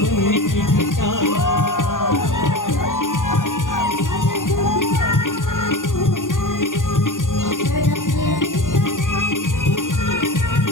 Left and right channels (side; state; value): right; late; 0.88 ms